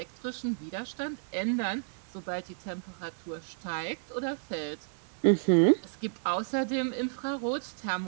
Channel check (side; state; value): left; silent; digital silence